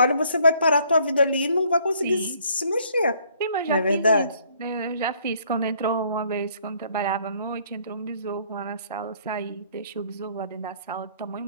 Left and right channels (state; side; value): inverted; both; correlation -0.63